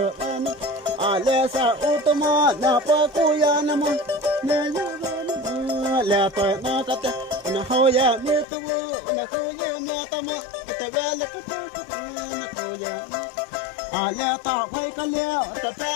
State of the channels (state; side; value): drops out; right; at 8.5 s